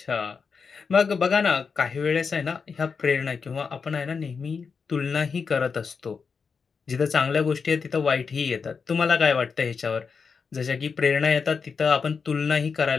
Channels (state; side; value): quieter; right; 5.5 dB